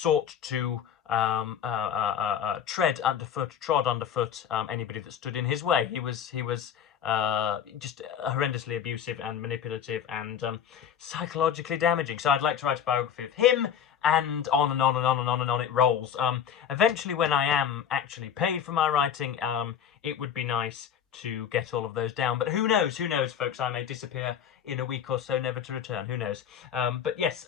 to trod underfoot anybody that stood in his way. He was just horrendously abusive and manipulative and psychologically damaging. So I'd like to write a biography of him, and on and on and on and on and on it rolls. Eventually, when I am actually paid for my writing, it would be nice to get all of those down. But who knows, folks? I may disappear in a week or so, never to return. Who knows? But yes,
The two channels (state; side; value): quieter; right; 8.7 dB